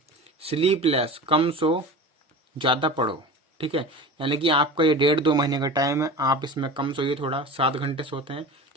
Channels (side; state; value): both; normal; correlation 0.33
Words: स्लीप लेस, कम सो ज़्यादा पढ़ो। ठीक है, यानी कि आपका ये 1.5-2 महीने का टाइम है, आप इसमें कम सोइए थोड़ा, 7 घंटे सोते हैं,